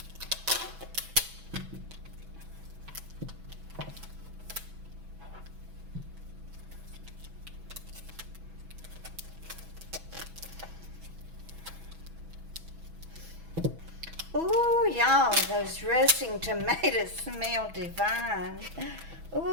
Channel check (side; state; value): left; late; 6.1 ms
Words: Oh, y'all, those roasting tomatoes smell divine.